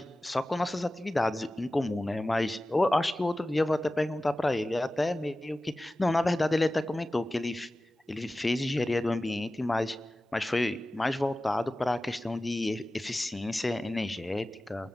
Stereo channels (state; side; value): normal; both; correlation 0.96